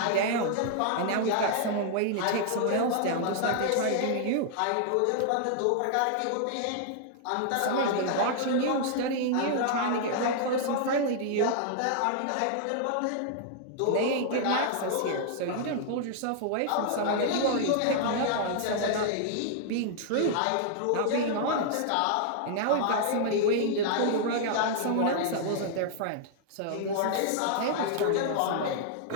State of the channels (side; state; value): both; different; correlation -0.01